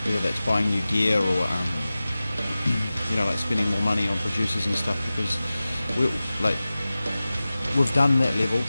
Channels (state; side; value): inverted; both; correlation -0.96